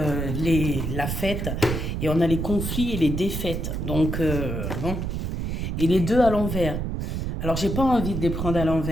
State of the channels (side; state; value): right; noise; rumble, 3 dB below the sound